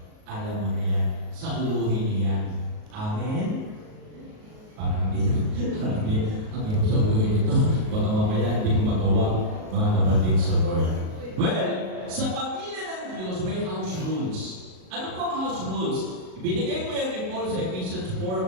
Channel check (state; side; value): late; left; 37 ms